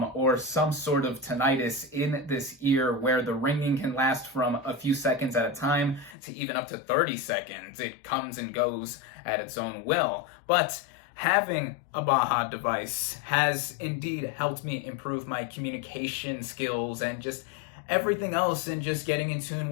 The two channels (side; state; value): right; drops out; at 6.2 s